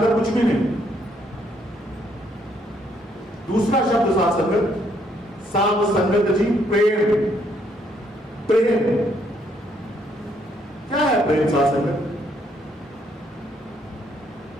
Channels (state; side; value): normal; both; correlation 0.70